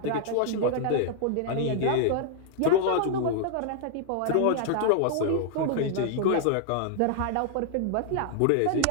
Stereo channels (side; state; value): both; different; correlation -0.01